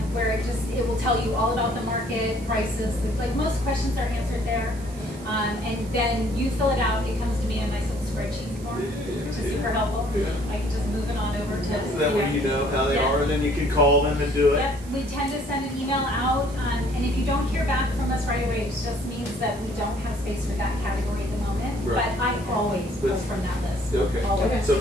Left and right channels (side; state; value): right; noise; hiss, 20 dB below the sound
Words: where it will tell you all about the market, prices. Like most questions are answered there, and then you fill it out. It comes to me in a nice little spreadsheet form, which is super helpful. Yeah. I can just move it on over to. That way you know how they Yeah. are, and then you can call them and do it. Yep, we tend to send an email out, And if you don't hear back from us right away, it just means that we don't have space for that category at the moment. Right. But I always pull But- from that list. Okay. Always. So